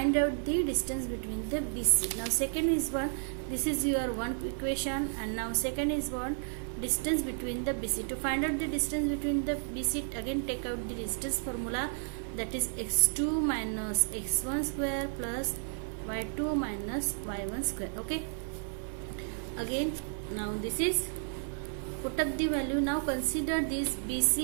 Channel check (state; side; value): silent; left; digital silence